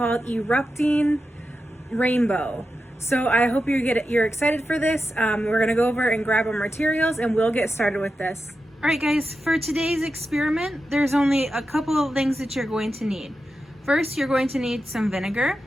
Erupting Rainbow. So I hope you're excited for this. We're gonna go over and grab our materials and we'll get started with this. Alright guys, for today's experiment, there's only a couple of things that you're going to need. First, you're going to need some vinegar.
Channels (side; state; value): both; normal; correlation 0.90